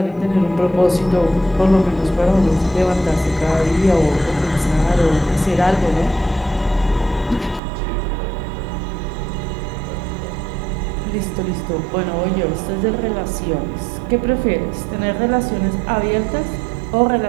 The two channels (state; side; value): drops out; left; at 7.6 s